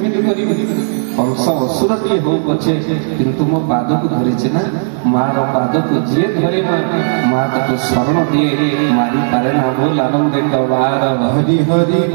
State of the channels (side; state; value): left; silent; digital silence